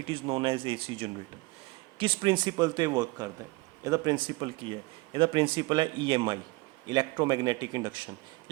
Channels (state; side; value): quieter; left; 23.3 dB